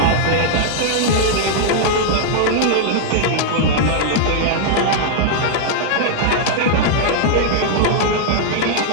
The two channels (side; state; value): both; different; correlation -0.01